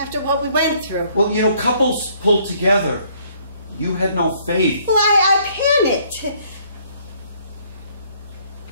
what we went through. Well, you know, couples pull together. You had no faith. Well, I panicked.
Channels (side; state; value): both; inverted; correlation -0.64